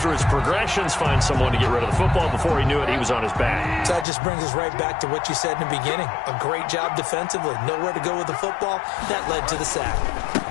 his progressions, find someone to get rid of the football. Before he knew it, he was on his back. So that just brings us right back to what you said in the beginning. A great job defensively. Nowhere to go with the football. That led to the sack.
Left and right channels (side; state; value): right; drops out; at 4.0 s